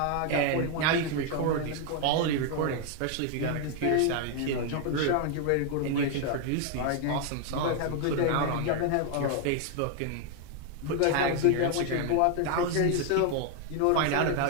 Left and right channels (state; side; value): different; both; correlation 0.00